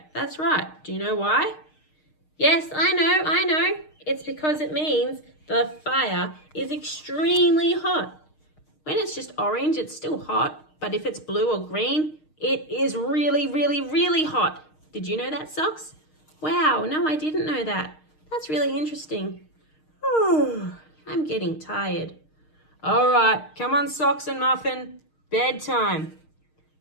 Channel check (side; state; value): right; late; 6.5 ms